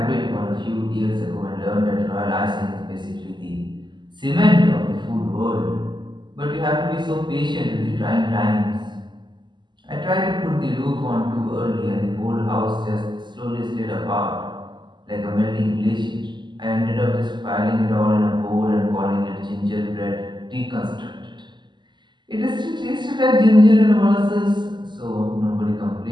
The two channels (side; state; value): left; late; 0.22 ms